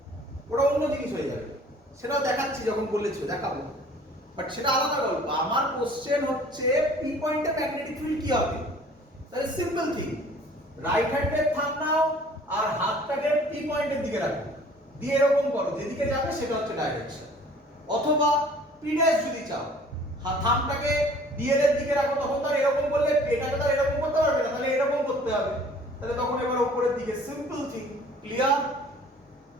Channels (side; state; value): both; normal; correlation 0.51